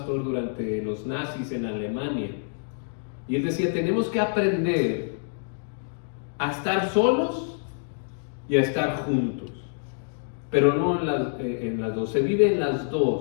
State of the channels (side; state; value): right; silent; digital silence